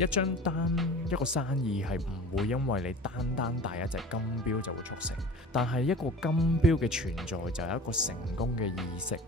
一張單一個生意係唔會因為你單帶一隻金錶就會促成，但係一個金錶嘅存在就有一個成功嘅意識。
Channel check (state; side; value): normal; both; correlation 0.40